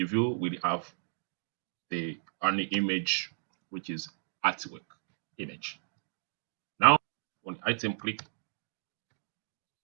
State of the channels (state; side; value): silent; left; digital silence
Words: view will have the only image, which is artwork image. Now on item, click